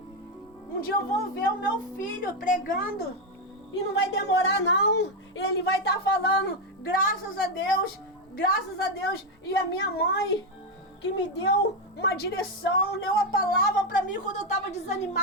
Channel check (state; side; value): normal; both; correlation 0.06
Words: Um dia eu vou ver o meu filho pregando e não vai demorar não. Ele vai estar falando, graças a Deus, e a minha mãe que me deu uma direção, deu a palavra para mim quando eu estava